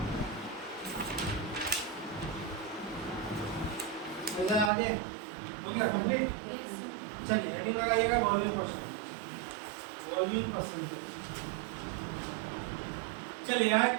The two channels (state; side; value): drops out; left; at 4.7 s